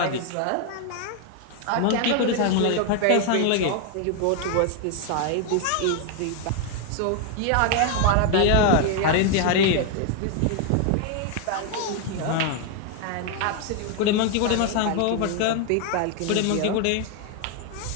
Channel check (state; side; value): different; both; correlation 0.01